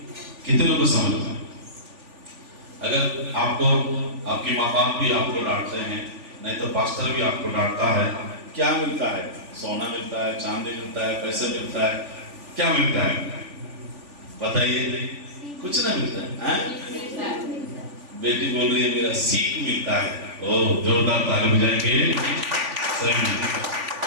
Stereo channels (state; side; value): late; left; 3.5 ms